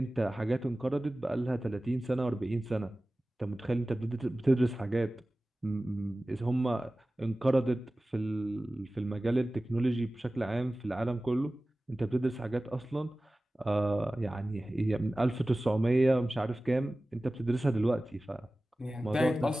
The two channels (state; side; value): normal; both; correlation 0.97